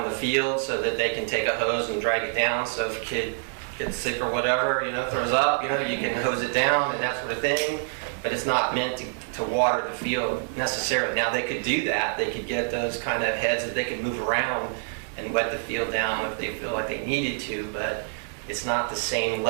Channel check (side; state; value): left; silent; 61 dB below the other